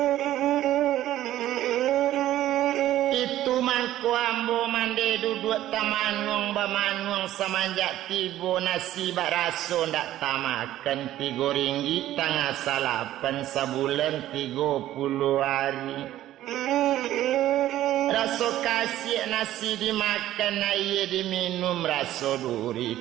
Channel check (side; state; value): left; quieter; 13.6 dB